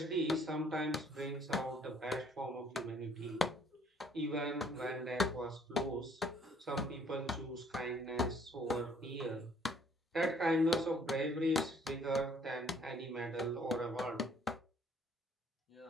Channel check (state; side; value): normal; both; correlation 0.60